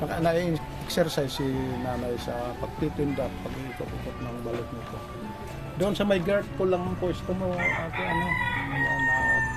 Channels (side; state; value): both; identical; correlation 1.00